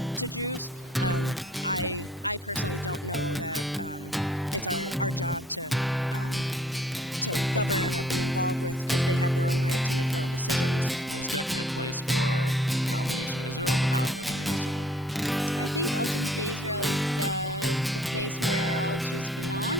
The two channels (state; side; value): normal; both; correlation 0.58